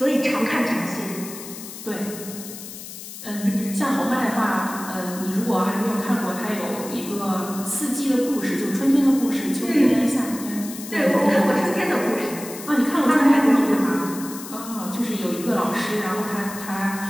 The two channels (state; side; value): noise; left; hiss, 12 dB below the sound